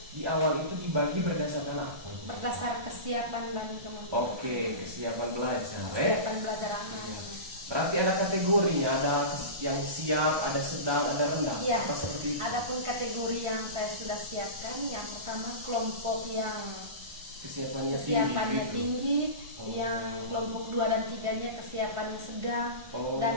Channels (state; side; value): late; left; 1.2 ms